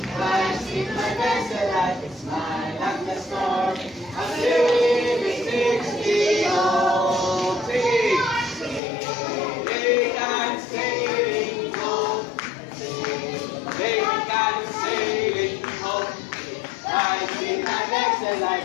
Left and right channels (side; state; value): right; drops out; at 8.8 s